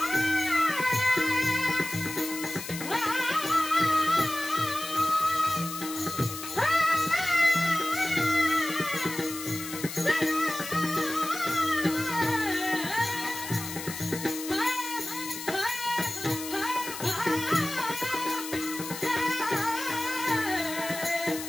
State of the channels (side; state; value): left; noise; hiss, 9 dB below the sound